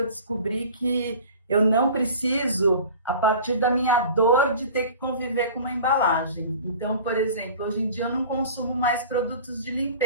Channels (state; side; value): inverted; both; correlation -0.42